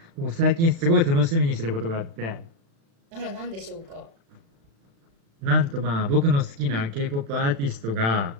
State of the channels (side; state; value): left; late; 36 ms